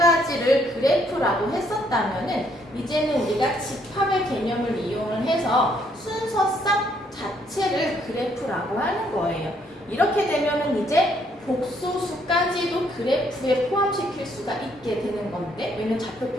그래프라고 했었다면은 이제는 우리가 집합의 개념을 이용을 해서 순서상 자체를 그래프라고 하는 거예요. 이렇게 되면은 이제 복소수까지도 그래프에 포함시킬 수가 있게 되는 건데, 왜냐면 좌표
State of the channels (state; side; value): normal; both; correlation 0.69